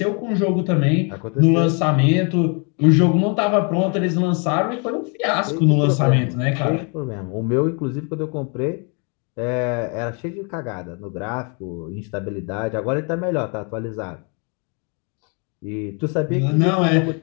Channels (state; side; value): quieter; right; 35.8 dB